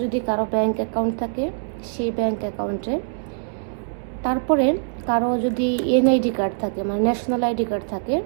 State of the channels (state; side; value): silent; left; 63 dB below the other